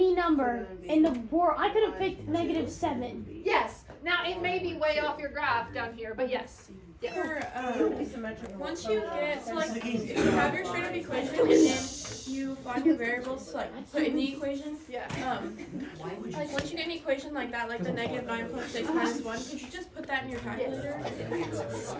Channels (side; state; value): both; identical; correlation 1.00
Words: number in the board. I could have picked -7. Yes. Now it may be way off your graph down here, but yes. Yeah. For, once you get, so like, if you have your straight up equation and then you find the variables to like put in the equation, Yeah. like once you get an equation like that, like the -9.6 minus 1, could you just put that in your calculator?